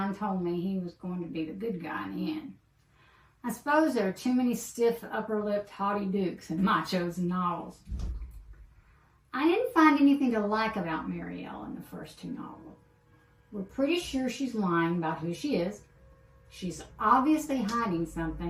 told me he was going to be the good guy in the end. I suppose there are too many stiff, upper-lipped, haughty dukes in my chosen novels. I didn't find anything to like about Marielle in the first two novels. We're pretty sure she's lying about who she is. She's obviously hiding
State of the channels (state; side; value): identical; both; correlation 1.00